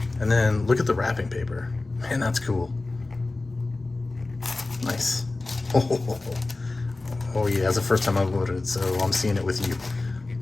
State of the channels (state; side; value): quieter; right; 3.2 dB